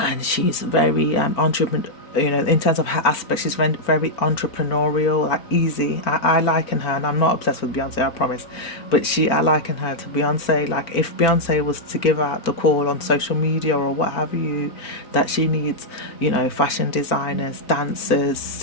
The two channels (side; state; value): right; late; 4.4 ms